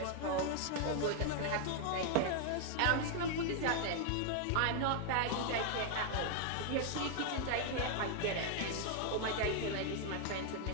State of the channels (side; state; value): both; different; correlation 0.00